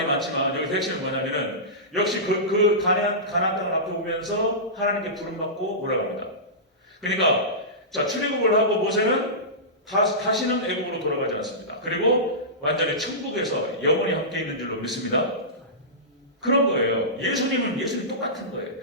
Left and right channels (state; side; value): normal; both; correlation -0.19